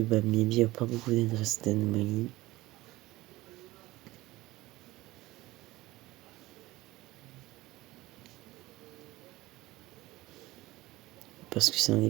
a pas beaucoup d'adresses d'anomalie, parce que c'est un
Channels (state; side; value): quieter; left; 18.7 dB